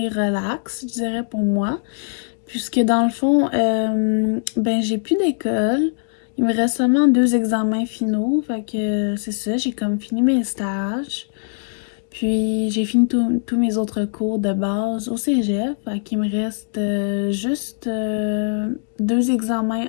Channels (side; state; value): right; silent; digital silence